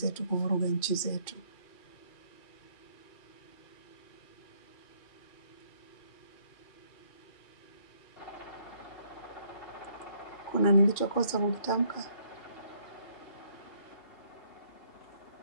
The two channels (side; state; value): right; late; 2.4 ms